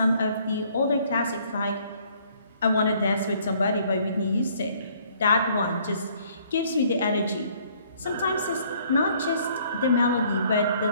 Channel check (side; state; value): both; inverted; correlation -0.62